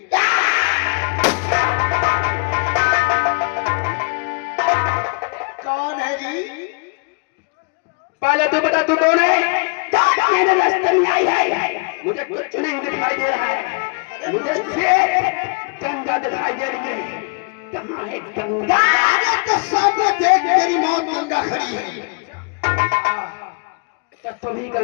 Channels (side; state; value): right; quieter; 32.4 dB